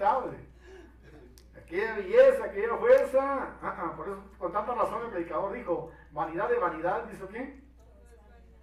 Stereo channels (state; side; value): identical; both; correlation 1.00